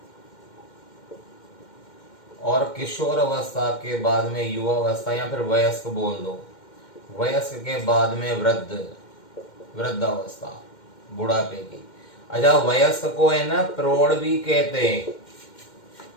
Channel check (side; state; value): right; late; 2.1 ms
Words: और किशोर अवस्था के बाद में युवा अवस्था, या फिर वयस्क बोल दो। वयस्क के बाद में वृद्धावस्था, बुढ़ापे की। अच्छा, वयस्क को है ना प्रौढ़ भी कहते हैं,